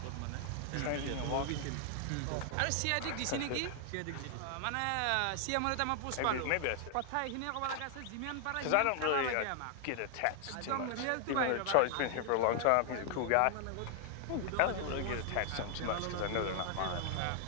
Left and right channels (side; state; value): both; different; correlation 0.00